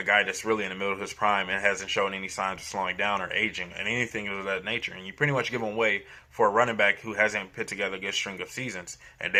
guy that's really in the middle of his prime and hasn't shown any signs of slowing down or aging and anything of that nature. And you pretty much give him away for a running back who hasn't put together a good string of seasons. And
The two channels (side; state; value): both; identical; correlation 1.00